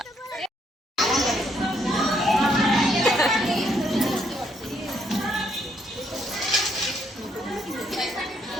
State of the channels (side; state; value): both; normal; correlation 0.72